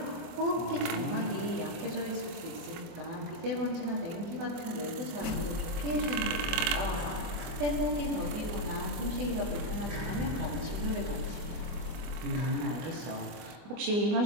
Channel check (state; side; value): late; left; 25 ms